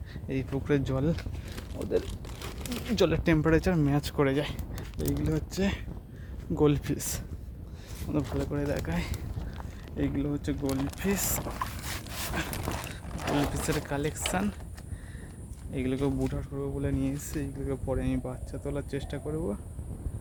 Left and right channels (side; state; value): both; identical; correlation 1.00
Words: এই পুকুরের জল ওদের জলের টেম্পারেচার ম্যাচ করে যায়। এইগুলো হচ্ছে গোল্ডফিশ, ওদের ভালো করে দেখায়। এইগুলো হচ্ছে গোল্ডফিশের কালেকশান। এইগুলোকে বুটার করবো বলে নিয়ে এসেছি। এইগুলোকে পরে আমি বাচ্চা তোলার চেষ্টা করবো।